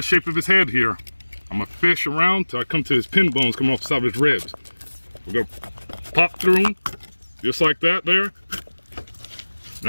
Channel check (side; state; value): both; inverted; correlation -1.00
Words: shape of his head here. I'm gonna fish around till I come to his pin bones coming off the side of his ribs. We're gonna pop through him, just like that there.